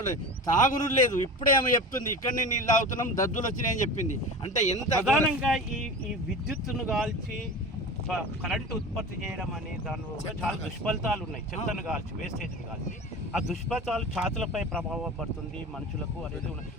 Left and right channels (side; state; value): both; normal; correlation 0.32